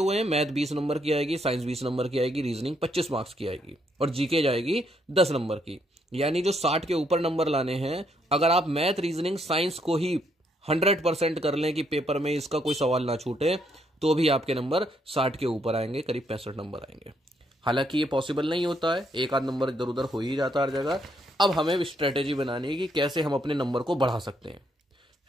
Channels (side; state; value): both; normal; correlation 0.73